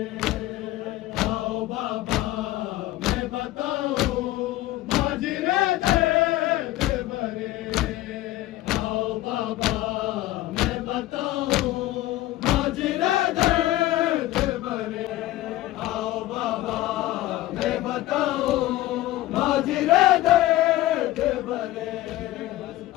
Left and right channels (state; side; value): quieter; right; 16.2 dB